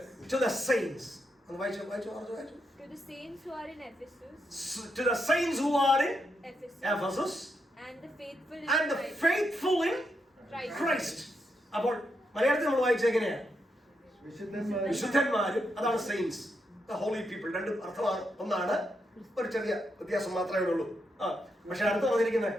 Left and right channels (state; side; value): normal; both; correlation 0.82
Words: to the saints. അത് വായിച്ചു. To the saints who are in Ephesus. To the saints who are in Ephesus. And the faithful in And the faithful in Christ. അപ്പോൾ മലയാളത്തിൽ നമ്മൾ വായിച്ചത് എങ്ങനെയാ? വിശുദ്ധന്മാരും. അതാണ് സെയിൻസ്, ദ ഹോളി പീപ്പിൾ. 2 അർത്ഥമാണ്. ഒന്നാണ്, ഒരു ചെറിയ വ്യത്യാസം മാത്രമേ ഉള്ളൂ. പക്ഷെ അടുത്ത് പറഞ്ഞിരിക്കുന്നത്